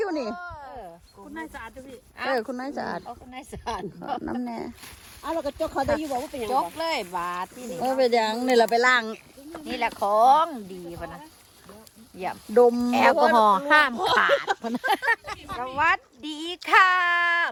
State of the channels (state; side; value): identical; both; correlation 1.00